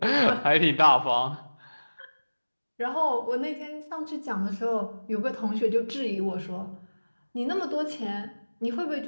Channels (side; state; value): both; inverted; correlation -1.00